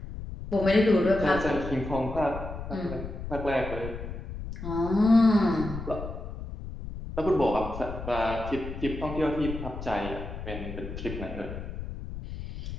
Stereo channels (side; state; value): left; noise; rumble, 9 dB below the sound